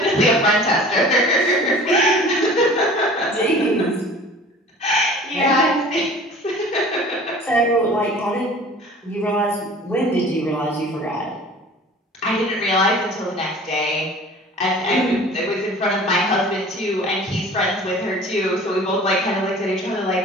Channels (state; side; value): normal; both; correlation 0.44